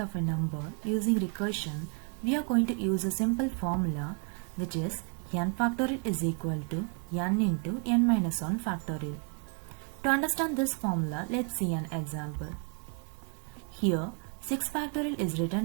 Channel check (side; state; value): left; quieter; 38.7 dB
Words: of a number using recursion, we are going to use a simple formula which is n factorial is equal to n into n minus 1 factorial. To understand this formula, let's see an example. Here, 6 factorial is written